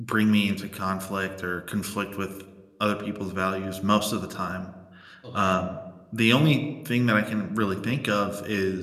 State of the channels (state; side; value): identical; both; correlation 1.00